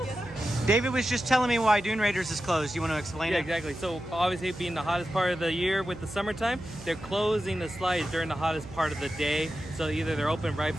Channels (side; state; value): right; noise; hum, 16 dB below the sound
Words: David was just telling me why Dune Raiders is closed. You want to explain Yeah, it? exactly. So obviously being the hottest part of the year with the summertime, they're closing the slides during the hottest part of the day. So either they're open right